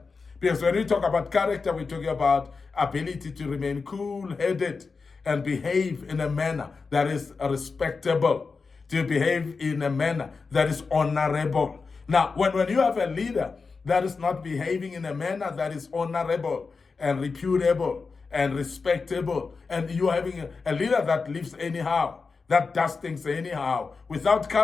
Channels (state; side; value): quieter; right; 4.6 dB